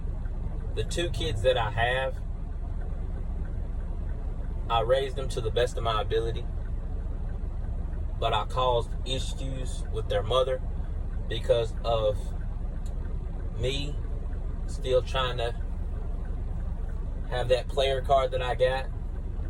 the two kids that I have, I raised them to the best of my ability. But I caused issues with their mother because of me still trying to have that player card that I got.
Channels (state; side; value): identical; both; correlation 1.00